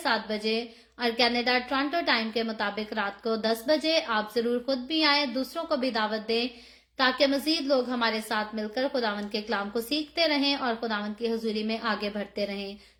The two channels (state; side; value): identical; both; correlation 1.00